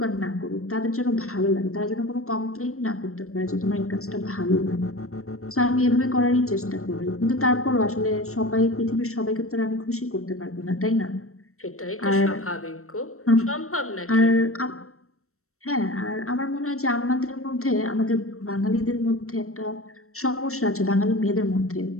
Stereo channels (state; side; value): late; right; 0.63 ms